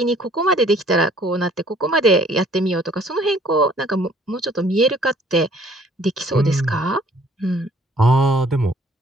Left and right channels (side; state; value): both; normal; correlation 0.58